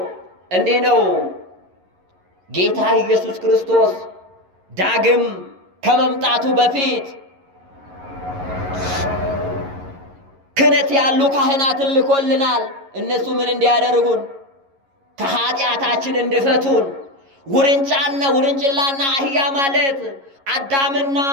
እንዲህ ነው። ጌታ ኢየሱስ ክርስቶስ ዳግም ከመምጣቱ በፊት ክህነት ያሉ ካህናትን ልኮልናል። እነሱ ምን እንዲያደርጉን? ከኃጢአታችን እንዲፈቱን። ውርንጭላና አህያ ማለት አዳምና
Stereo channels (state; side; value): late; left; 11 ms